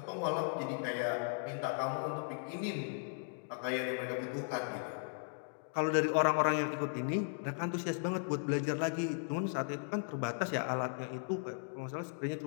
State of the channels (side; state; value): right; silent; digital silence